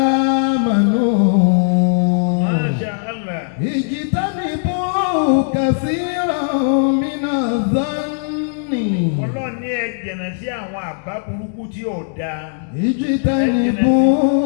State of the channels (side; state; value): right; silent; digital silence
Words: آمنوا Masha Allah. اجتنبوا كثيرا من الظن. Ọlọ́run ní ẹ jìnnà sí àwọn àbá burúkú tí ò dáa.